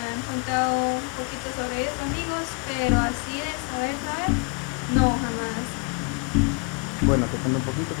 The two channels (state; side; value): quieter; right; 32.2 dB